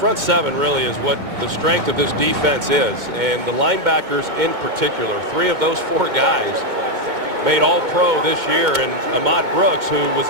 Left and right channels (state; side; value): late; left; 2.2 ms